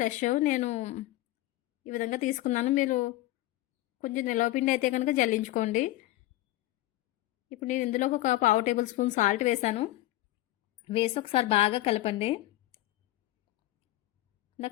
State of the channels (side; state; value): right; quieter; 16.7 dB